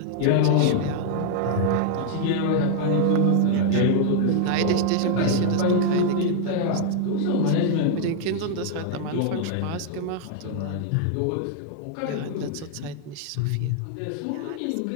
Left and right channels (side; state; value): both; different; correlation 0.00